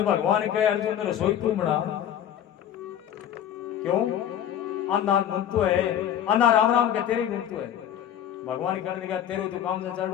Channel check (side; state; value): right; quieter; 10.1 dB